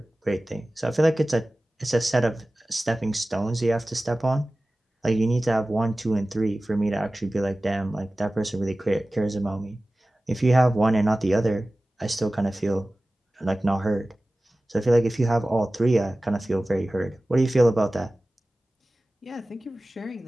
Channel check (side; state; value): both; normal; correlation 0.97